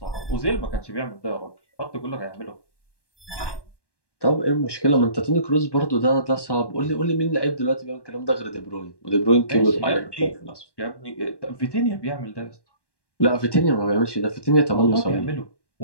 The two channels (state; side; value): late; right; 1.1 ms